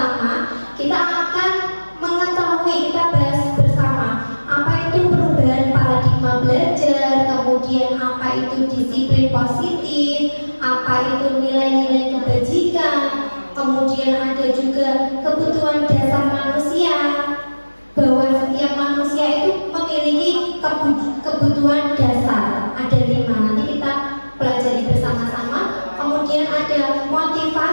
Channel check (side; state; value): both; inverted; correlation -1.00